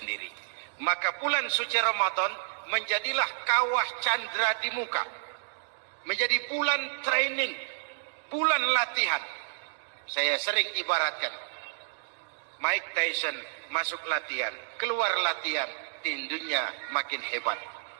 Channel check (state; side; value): silent; left; digital silence